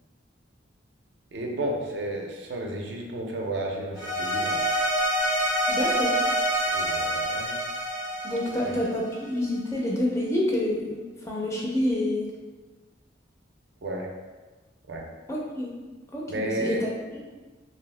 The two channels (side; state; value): both; normal; correlation 0.35